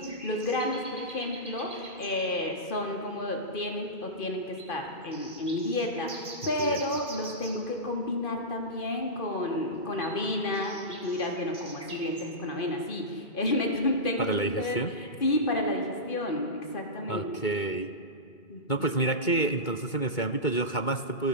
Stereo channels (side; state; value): right; late; 2.2 ms